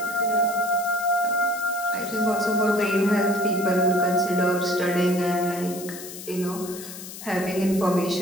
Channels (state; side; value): noise; left; hiss, 12 dB below the sound